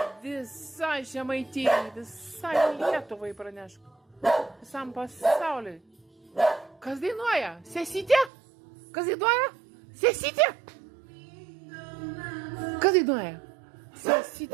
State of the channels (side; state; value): left; drops out; at 8.3 s